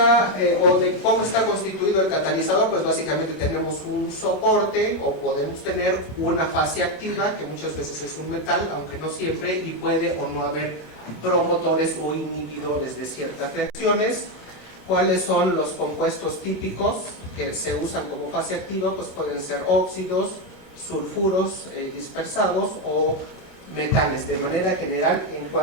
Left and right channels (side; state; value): right; late; 27 ms